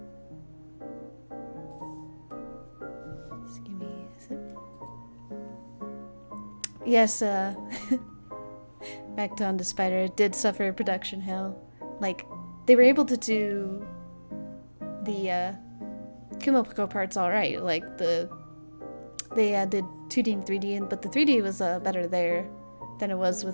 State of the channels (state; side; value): inverted; both; correlation -1.00